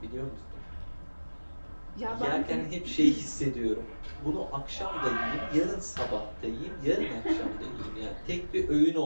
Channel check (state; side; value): inverted; both; correlation -1.00